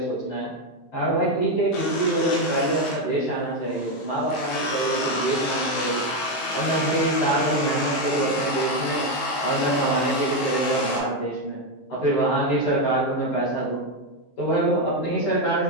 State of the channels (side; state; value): right; late; 15 ms